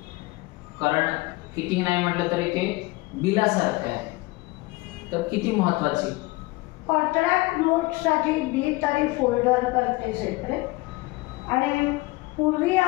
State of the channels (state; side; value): quieter; right; 21.8 dB